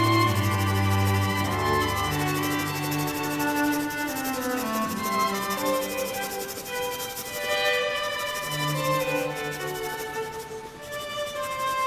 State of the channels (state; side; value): identical; both; correlation 1.00